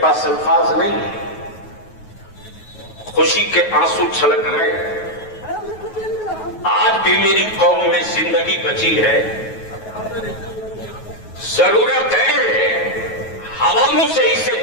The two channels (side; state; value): right; late; 9.3 ms